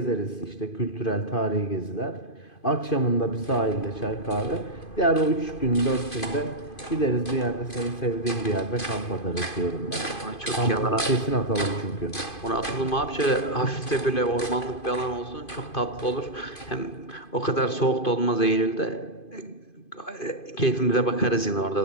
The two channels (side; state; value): right; late; 2.5 ms